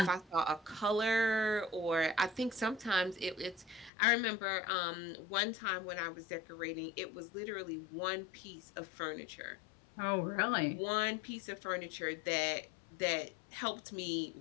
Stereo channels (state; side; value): drops out; right; at 3.9 s